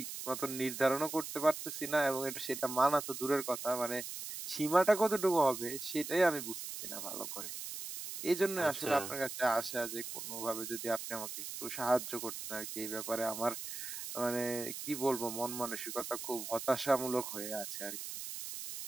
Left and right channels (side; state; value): right; noise; hiss, 7 dB below the sound